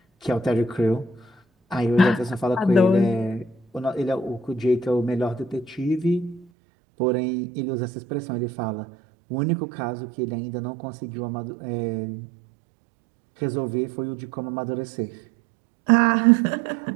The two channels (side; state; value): left; drops out; at 6.5 s